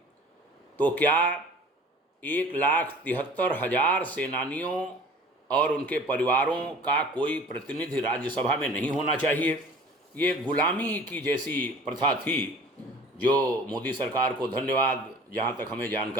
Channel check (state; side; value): normal; both; correlation 0.45